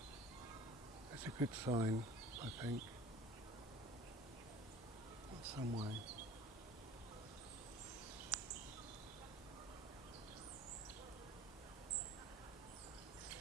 It's a good sign, I think, in some way.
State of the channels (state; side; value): normal; both; correlation 0.44